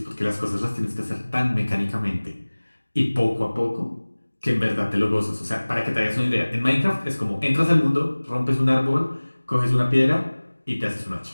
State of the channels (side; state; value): both; inverted; correlation -1.00